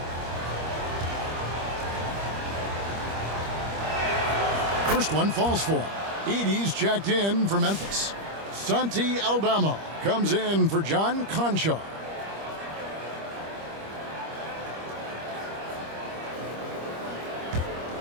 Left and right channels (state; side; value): late; left; 25 ms